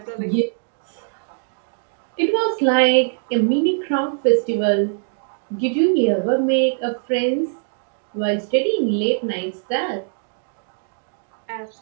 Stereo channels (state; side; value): silent; left; digital silence